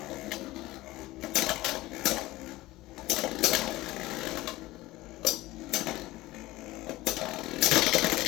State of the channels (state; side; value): quieter; right; 18.3 dB